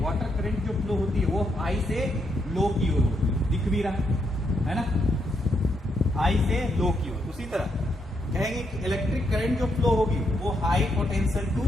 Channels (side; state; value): both; normal; correlation 0.78